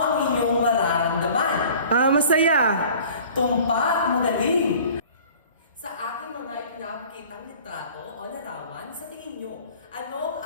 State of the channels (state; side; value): inverted; both; correlation -0.47